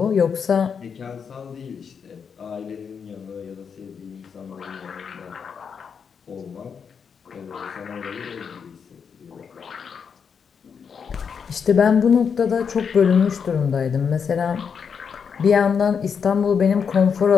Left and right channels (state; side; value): quieter; right; 6.6 dB